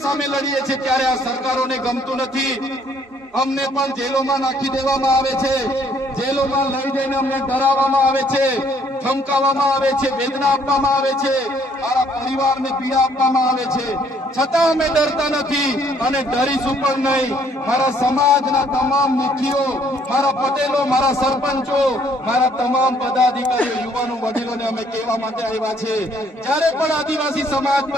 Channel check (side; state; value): both; normal; correlation 0.64